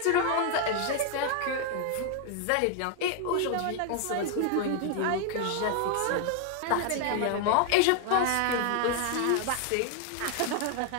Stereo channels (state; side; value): different; both; correlation 0.00